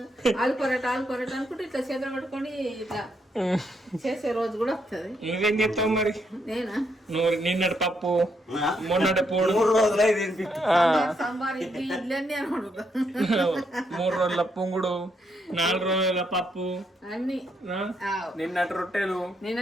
aloo paratha అనుకుంటే ఇట్లా చేతులు పట్టుకొని ఇట్లా చేసే రోజు కూడా వస్తుంది. నువ్వేం చేస్తావు మరి? నేనా నువ్వు నిన్నటి పప్పు మొన్నటి పోడు 3 రోజులు అయింది. సాంబార్ ఇడ్లీ అన్ని అని అడుగుతా. 3 రోజుల పొంగుడు 4 రోజుల పప్పు అన్ని నిన్నటి రొట్టెలు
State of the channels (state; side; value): normal; both; correlation 0.77